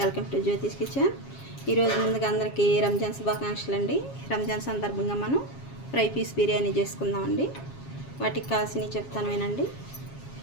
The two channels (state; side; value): late; right; 7.3 ms